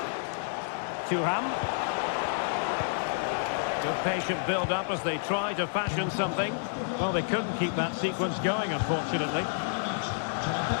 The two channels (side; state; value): right; silent; digital silence